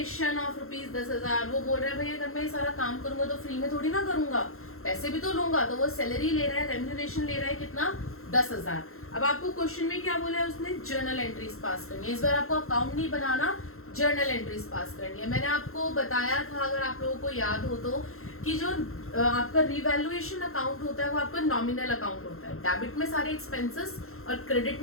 of ₹10,000। वो बोल रहा है भैया अगर मैं ये सारा काम करूंगा तो फ्री में थोड़ी ना करूंगा, पैसे भी तो लूंगा। तो वो सैलरी ले रहा है, रेम्यूनरेशन ले रहा है, कितना? 10,000। अब आपको क्वेश्चन में क्या बोला है उसने? जर्नल एंट्रीज पास करनी है। इस बार आपको अकाउंट नहीं बनाना, जर्नल एंट्रीज पास करनी है। मैंने आपको बताया था, अगर आप लोगों को याद हो तो, कि जो आपका रिवैल्यूएशन अकाउंट होता है वो आपका नॉमिनल अकाउंट होता है। डेबिट में सारे एक्सपेंसेस और क्रेडिट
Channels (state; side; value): late; right; 0.62 ms